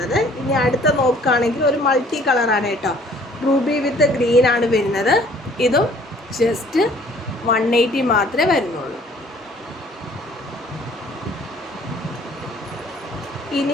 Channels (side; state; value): both; normal; correlation 0.56